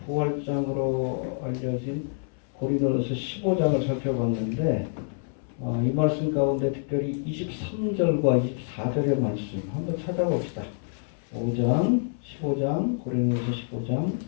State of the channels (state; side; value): silent; right; 60 dB below the other